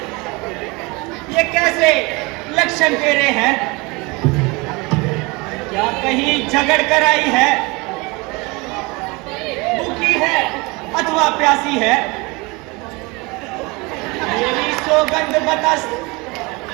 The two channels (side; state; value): left; quieter; 26.0 dB